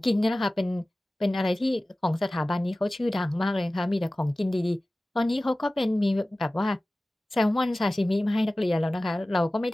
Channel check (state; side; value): normal; both; correlation 0.97